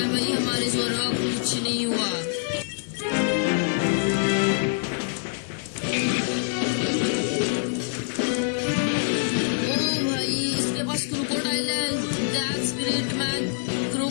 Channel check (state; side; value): silent; right; digital silence